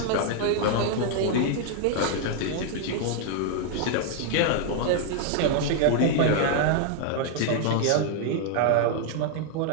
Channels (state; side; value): different; both; correlation 0.00